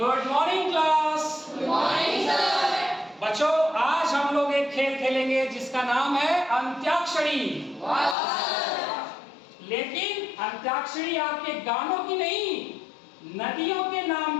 morning class. Good morning sir. बच्चों, आज हम लोग एक खेल खेलेंगे जिसका नाम है अंत्याक्षरी। लेकिन अंत्याक्षरी आपके गानों की नहीं, नदियों के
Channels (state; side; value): drops out; right; at 8.2 s